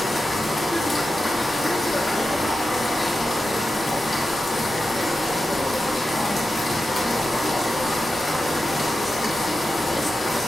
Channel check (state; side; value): normal; both; correlation 0.90